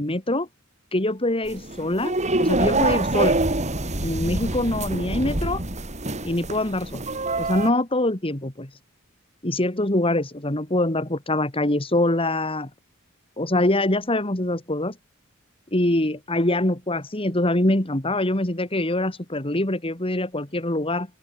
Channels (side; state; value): both; normal; correlation 0.51